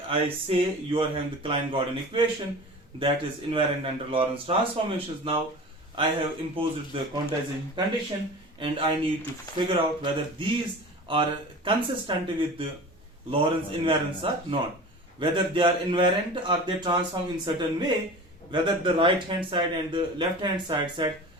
I say you are having the Klein-Gordon equation that is invariant under Lorentz transformations. Now I have imposed the quantization condition, and I need to figure out whether these are consistent with the Lorentz invariants or not. Whether they are invariant or they transform in certain way, whether the right hand side and the left hand side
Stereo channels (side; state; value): both; normal; correlation 0.36